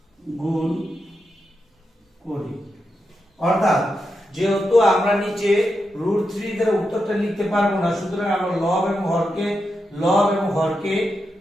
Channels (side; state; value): both; normal; correlation 0.86